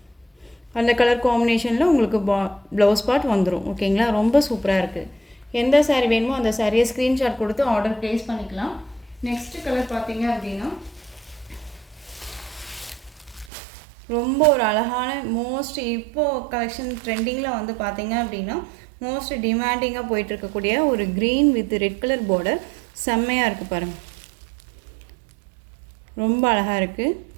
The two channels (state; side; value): drops out; left; at 13.5 s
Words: அந்த கலர் காம்பினேஷனில் உங்களுக்கு ப்ளவுஸ் பார்ட் வந்துடும், ஓகேங்களா. ரொம்ப சூப்பராக இருக்குது. எந்த சாரீ வேணுமோ அந்த சாரியை ஸ்க்ரீன்ஷாட் கொடுத்து ஆர்டர் ப்ளேஸ் பண்ணிக்கலாம். நெக்ஸ்ட் கலர் பார்த்தீங்க அப்படின்னா ரொம்ப ஒரு அழகான மோஸ்ட் இப்போது கலெக்ஷன் ட்ரெண்டிங்கில் வந்து பார்த்தீங்க அப்படின்னா மோஸ்ட் டிமாண்டிங்காக போயிட்டுருக்கக்கூடிய ஒரு green with red colour border. செம்மையாக இருக்குது பாருங்கள், ரொம்ப அழகாக இருக்குது.